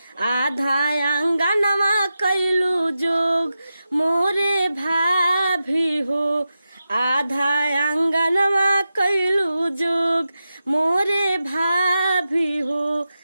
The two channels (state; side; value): inverted; both; correlation -0.91